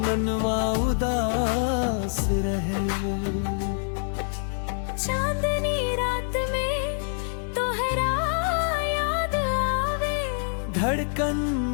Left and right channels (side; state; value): right; silent; 61 dB below the other